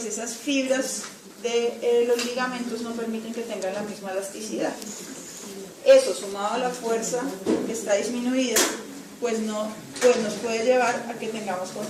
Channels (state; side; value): identical; both; correlation 1.00